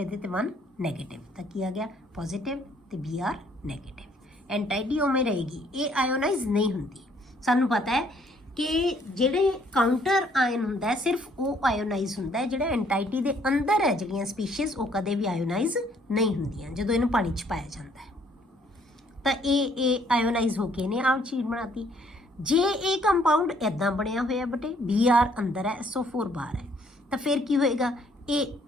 ਤੇ 1 ਨੈਗੇਟਿਵ, ਤਾਂ ਕੀ ਆ ਗਿਆ, ਪੋਜ਼ਿਟਿਵ ਤੇ Br ਨੈਗੇਟਿਵ। ਐਂਟਾਈਟੀ ਉਵੇਂ ਰਹੇਗੀ, ਇਹ ਆਇਓਨਾਈਜ਼ ਨਹੀਂ ਹੁੰਦੀ। ਸਾਨੂੰ ਪਤਾ ਹੈ ਕਿ ਜਿਹੜੇ ਕਾਊਂਟਰ ਆਇਨ ਹੁੰਦਾ ਸਿਰਫ ਉਹ ਆਇਓਨਾਈਜ਼ ਹੁੰਦਾ ਹੈ, ਜਿਹੜਾ ਐਂਟਾਈਟੀ ਦੇ ਅੰਦਰ ਹੈ ਜਿਹੜੀਆਂ ਸਪੀਸ਼ੀਜ਼ ਉਹ ਕਦੇ ਵੀ ਆਇਓਨਾਈਜ਼ ਨਹੀਂ ਹੁੰਦੀਆਂ ਜਦੋਂ ਇਹਨੂੰ ਪਾਣੀ 'ਚ ਪਾਇਆ ਜਾਂਦਾ ਹੈ। ਤਾਂ ਇਹ ਆਇਓਨਾਈਜ਼ ਹੋ ਕੇ ਇਹਨੇ ਆਹ ਚੀਜ਼ ਬਣਾਤੀ। ਜੇ ਇਹ ਕੰਪਾਊਂਡ ਇੱਦਾਂ ਬਣਿਆ ਹੋਇਆ ਬੇਟੇ, Br ਅੰਦਰ ਹੈ, SO4 ਬਾਹਰ ਹੈ, ਤਾਂ ਫਿਰ ਕੀ ਹੋਏਗਾ, ਇਹ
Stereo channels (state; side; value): normal; both; correlation 0.64